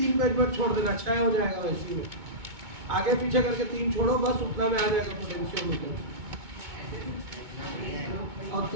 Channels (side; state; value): left; late; 2.2 ms